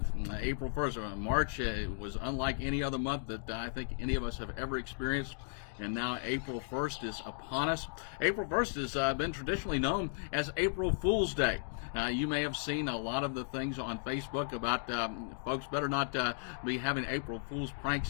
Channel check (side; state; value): right; silent; digital silence